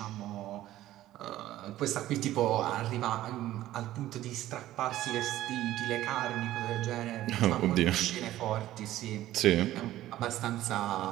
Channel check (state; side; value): quieter; left; 14.4 dB